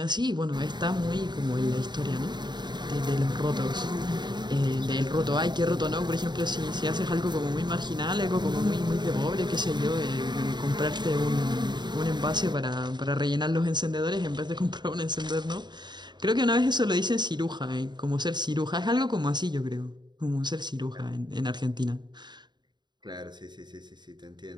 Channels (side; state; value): left; late; 0.21 ms